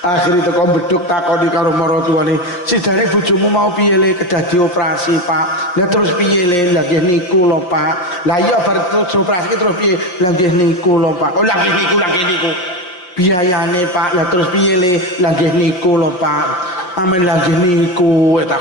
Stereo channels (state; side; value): late; right; 5.6 ms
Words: Akhirnya teko Beduk takoni karo maratuwane, "Sidane bojomu mau piye le kedah dioperasi, Pak?" Lah terus piye le? Lah nggih niku lho, Pak. Lah iya bar terus operasi terus piye? Lah nggih niku lho, Pak. Oh lah nggih niku. Biayane, Pak. Lah terus piye le? Lah nggih niku lho, Pak. Amen lah nggih niku